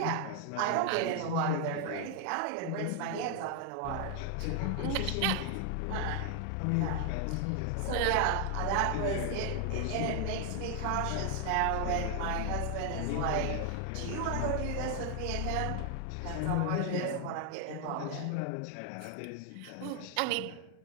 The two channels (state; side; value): different; both; correlation 0.00